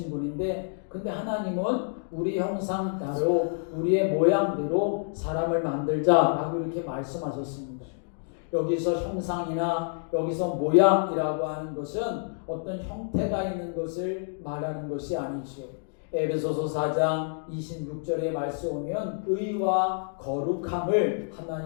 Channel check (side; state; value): right; silent; digital silence